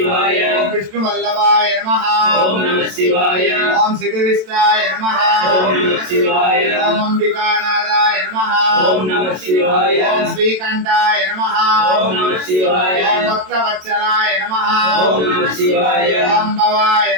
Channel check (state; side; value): late; left; 27 ms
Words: ఓం విష్ణువల్లభాయ నమః ఓం నమః శివాయ ఓం శివవిష్టాయ నమః ఓం నమః శివాయ ఓం అంబికానాథాయ నమః ఓం నమః శివాయ ఓం శ్రీకంఠాయ నమః ఓం నమః శివాయ ఓం భక్తవత్సలాయ నమః ఓం నమః శివాయ ఓం భవాయ